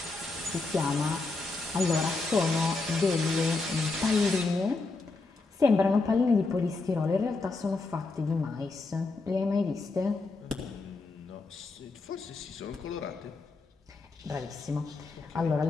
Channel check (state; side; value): quieter; right; 3.7 dB